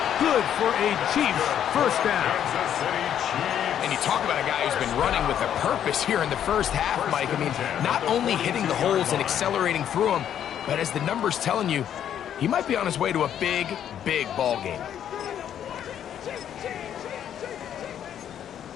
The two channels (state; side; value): quieter; right; 9.8 dB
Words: Good for a Chiefs first down. And you talk about a guy who's been running with a purpose here in the first half, Mike. I mean, not only hitting the holes and accelerating through them, but as the numbers telling you, he might be on his way to a big, big ball game.